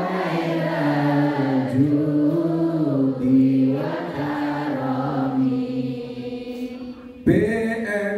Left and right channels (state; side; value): identical; both; correlation 1.00